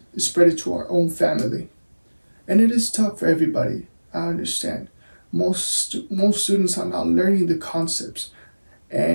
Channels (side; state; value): both; inverted; correlation -1.00